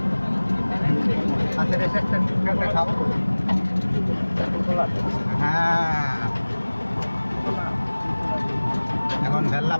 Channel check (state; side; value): inverted; both; correlation -1.00